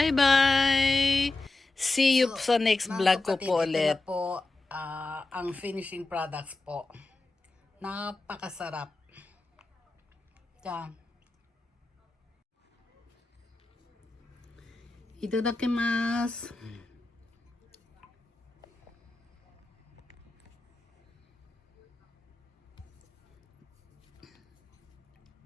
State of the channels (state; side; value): quieter; right; 3.1 dB